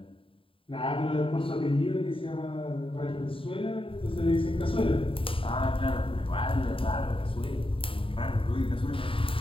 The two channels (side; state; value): right; late; 0.26 ms